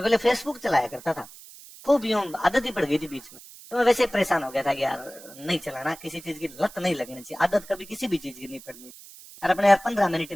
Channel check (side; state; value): right; noise; hiss, 19 dB below the sound